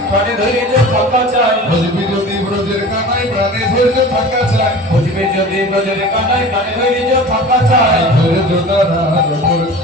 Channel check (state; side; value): normal; both; correlation 0.38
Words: ধৈর্য থাকা চাই। বুঝবি যদি ব্রজের কানাই প্রাণে ধৈর্য থাকা চাই, বুঝবি যদি ব্রজের কানাই প্রাণে ধৈর্য থাকা চাই। ধৈর্য দ্বারার উপর